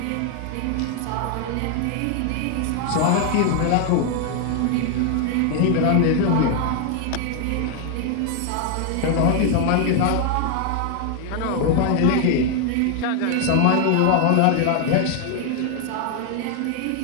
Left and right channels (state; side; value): different; both; correlation 0.00